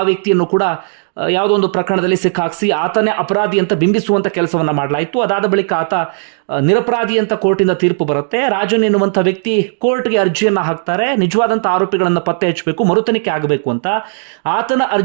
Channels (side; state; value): left; silent; 70 dB below the other